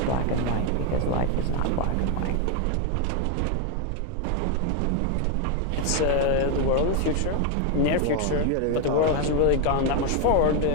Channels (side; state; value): both; different; correlation 0.01